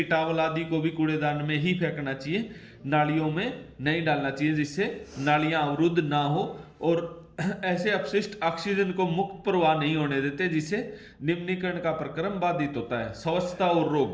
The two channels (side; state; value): both; identical; correlation 1.00